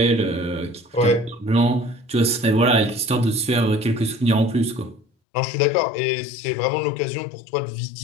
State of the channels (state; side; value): drops out; right; at 5.1 s